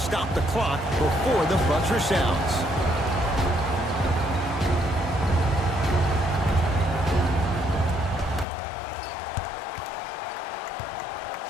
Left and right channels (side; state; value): right; drops out; at 8.5 s